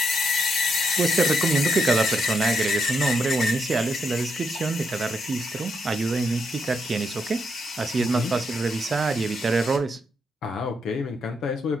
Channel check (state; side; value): normal; both; correlation 0.79